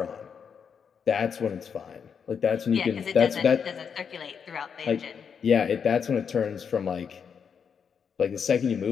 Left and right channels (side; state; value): right; quieter; 6.8 dB